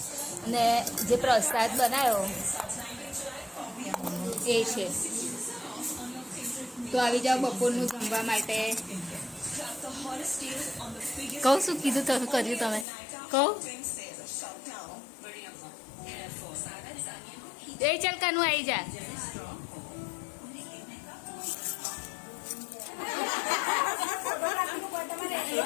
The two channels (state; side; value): drops out; right; at 12.9 s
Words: અને જે પ્રસાદ બનાવ્યો એ છે. તો આવી જાઓ બપોરનું જમવા માટે. કહું શું કીધું તમે કર્યું તમે કહું એ ચાલ કાનું આવી જા.